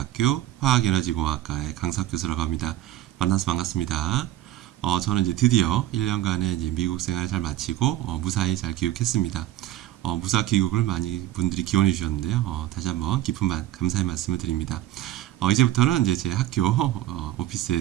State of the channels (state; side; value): quieter; left; 14.0 dB